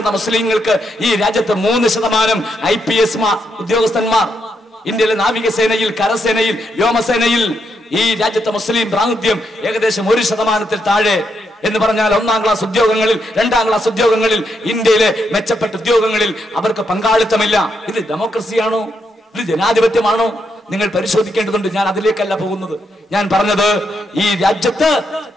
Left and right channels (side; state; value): both; normal; correlation 0.80